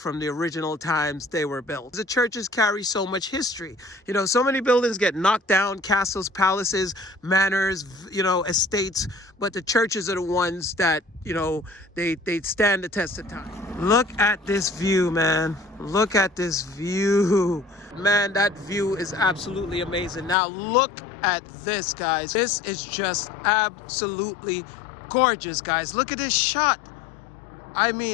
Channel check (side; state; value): right; drops out; at 20.4 s